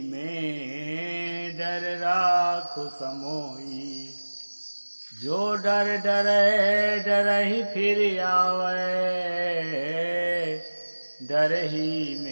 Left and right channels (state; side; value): inverted; both; correlation -1.00